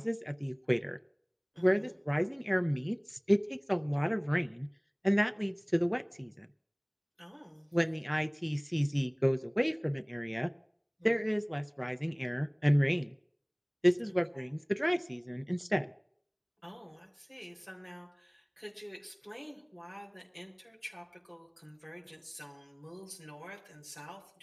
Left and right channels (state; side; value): identical; both; correlation 1.00